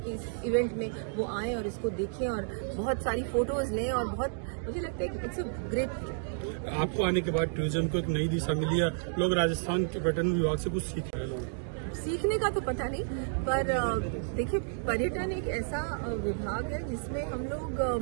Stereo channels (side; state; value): left; silent; digital silence